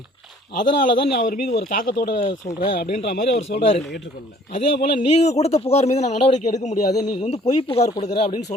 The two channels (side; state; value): both; normal; correlation 0.56